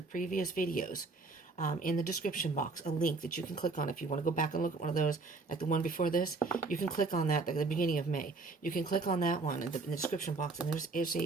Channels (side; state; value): left; quieter; 3.7 dB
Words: previous videos, in the description box, a link that you can click on if you want to go back and look at one of those, like the one before this. You can click on that at the beginning of May. You can click on that one in the description box, and there's